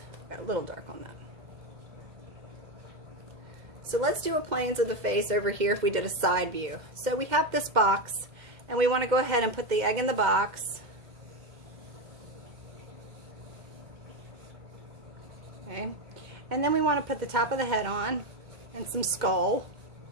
Got a little dark on that. So let's do a planes of the face over here if we did a side view. So we have this box, and we want to go ahead and put the egg in the box. Okay. And then we want to put the top of the head on and some skull.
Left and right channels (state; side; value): late; left; 2.1 ms